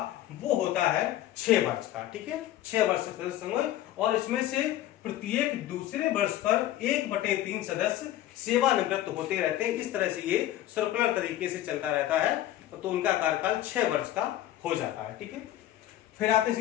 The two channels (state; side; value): quieter; right; 13.5 dB